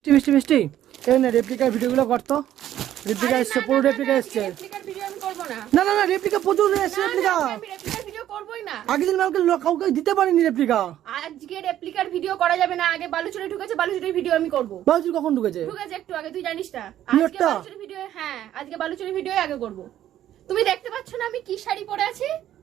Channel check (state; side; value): quieter; left; 12.0 dB